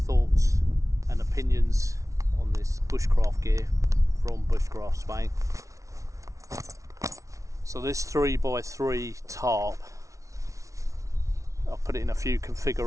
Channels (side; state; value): left; late; 0.15 ms